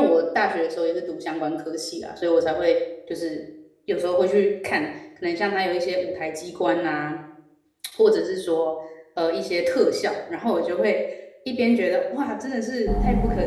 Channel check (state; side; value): identical; both; correlation 1.00